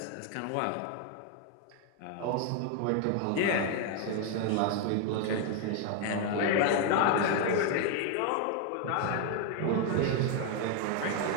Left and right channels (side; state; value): both; different; correlation 0.01